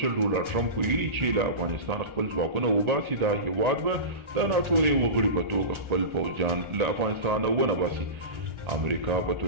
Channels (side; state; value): left; late; 1.3 ms